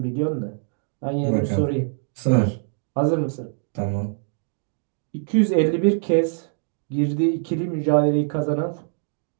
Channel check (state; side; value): silent; left; digital silence